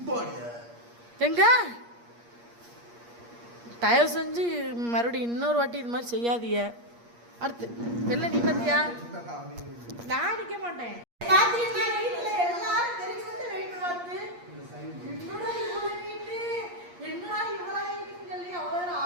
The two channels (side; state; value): left; late; 8.5 ms